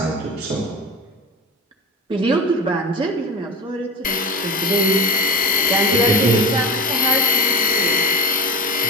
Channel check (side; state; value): both; normal; correlation 0.30